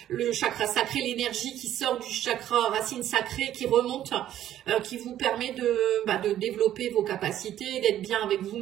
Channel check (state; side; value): quieter; left; 11.9 dB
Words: le chakra sacré, l'énergie qui sort du chakra racine sacrée, qui remonte, qui vous permet de développer vos capacités, d'être bien avec